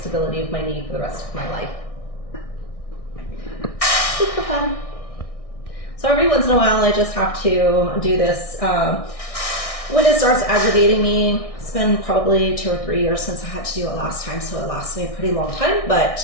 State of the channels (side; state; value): right; late; 1.6 ms